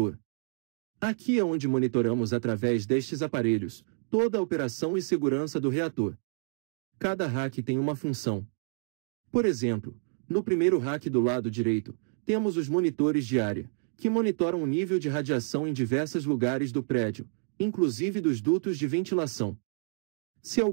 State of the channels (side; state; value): left; silent; 59 dB below the other